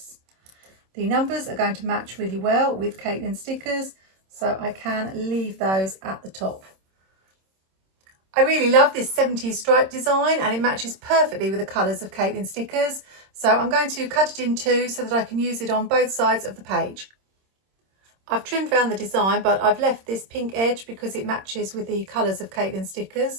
The numbers are going to match really well with Katelyn stickers, so I can leave those at the top. I really love this 70s stripe design and it matches perfectly with the colours of Katelyn stickers, so I'm going to cut it in two so that I can use it on both sides of the page. I've trimmed around the design, but I've left this pink edge because it matches with the colours of Katelyn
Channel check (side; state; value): left; late; 26 ms